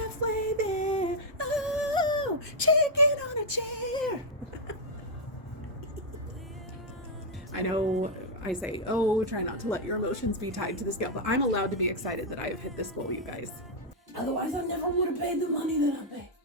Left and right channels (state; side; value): normal; both; correlation -0.03